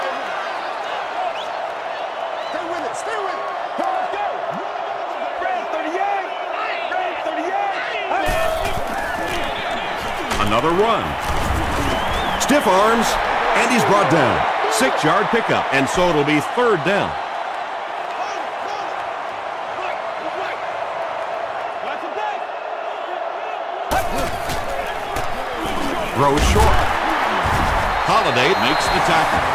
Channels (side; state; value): both; identical; correlation 1.00